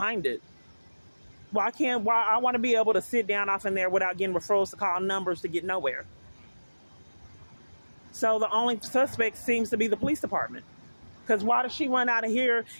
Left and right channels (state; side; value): inverted; both; correlation -1.00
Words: it? Why I want to be able to sit down off in there without getting referrals to call numbers to get nowhere. So the only suspect seems to be the police department. Because why does she run out of here